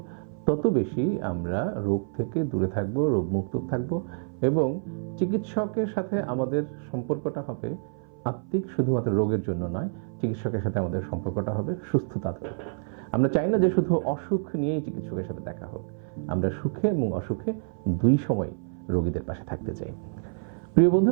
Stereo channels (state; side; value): silent; left; 56 dB below the other